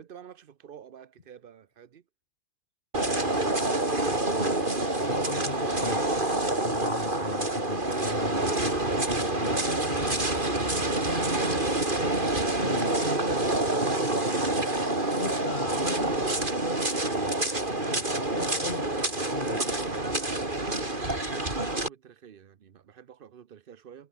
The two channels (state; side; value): late; left; 2.5 ms